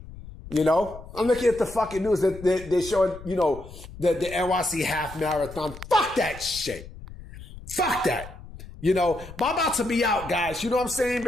I'm looking at the fucking news that they're showing, the NYC half marathon. Fuck that shit. Fuck that. But I'm about to be out, guys. You know what I'm saying?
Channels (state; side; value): noise; left; rumble, 15 dB below the sound